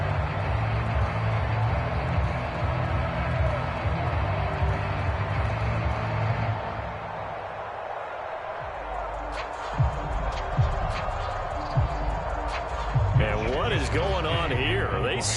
And what is going on here? Are they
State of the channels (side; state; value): both; identical; correlation 1.00